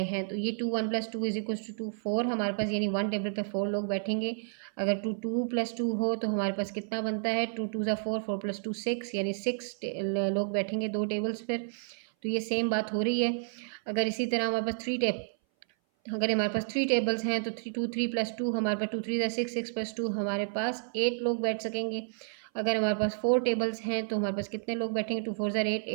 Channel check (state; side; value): silent; left; 56 dB below the other